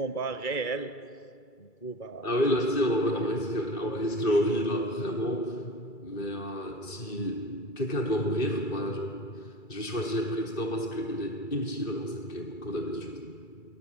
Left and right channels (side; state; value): right; late; 2.3 ms